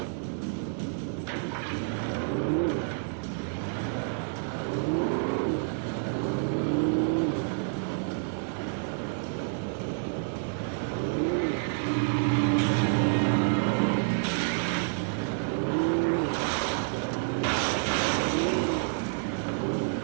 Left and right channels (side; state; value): left; silent; digital silence